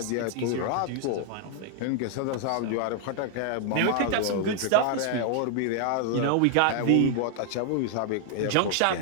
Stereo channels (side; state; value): both; different; correlation 0.00